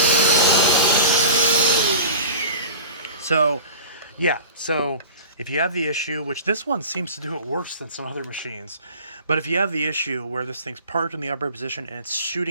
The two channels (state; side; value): inverted; both; correlation -0.38